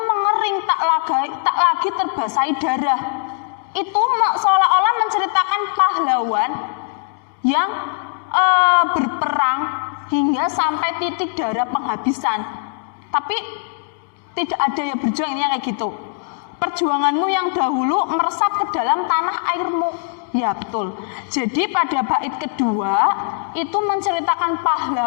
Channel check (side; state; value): right; silent; 66 dB below the other